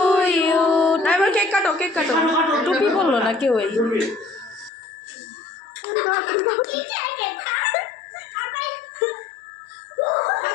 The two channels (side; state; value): right; drops out; at 4.7 s